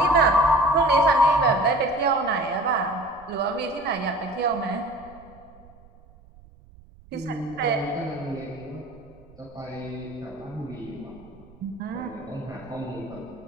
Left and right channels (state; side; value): noise; right; rumble, 24 dB below the sound